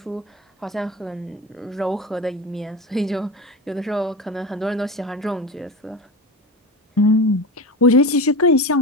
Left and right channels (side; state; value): both; normal; correlation 0.26